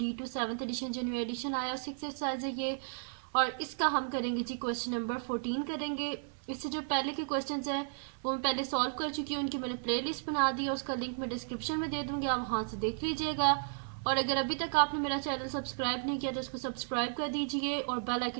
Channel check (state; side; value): silent; left; 55 dB below the other